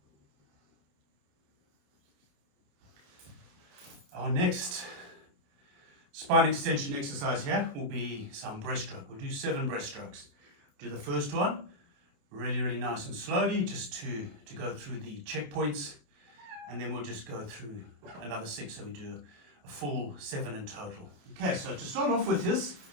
Our next spine extension exercise here will be some breaststroke. We'll do 7 breaststrokes. Do the first one really nice and slowly, just to go through the checkpoints, and then we'll just go through another 6, so we do a full 7 in total. Okay, so to start off with this,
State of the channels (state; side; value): late; left; 28 ms